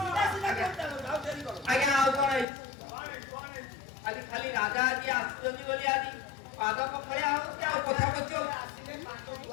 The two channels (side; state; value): right; drops out; at 2.5 s